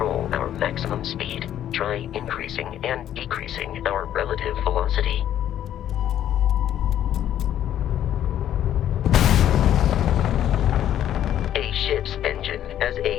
our maximum speed. Try increasing and decreasing our relative velocity. A ship's engine has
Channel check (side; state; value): right; quieter; 11.1 dB